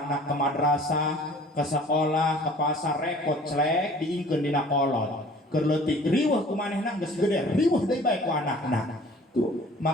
anak ke madrasah, ke sekolah, ke pasar, repot celek diingkeun dina kolot. Keur leutik riweuh kumanehna geus gede, riweuh deui bae ku anakna. Tuh,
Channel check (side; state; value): both; normal; correlation 0.50